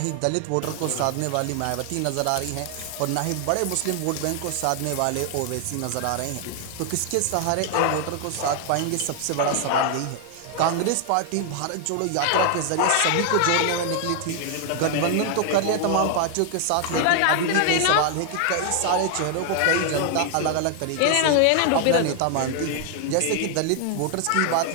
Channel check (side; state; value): both; different; correlation 0.00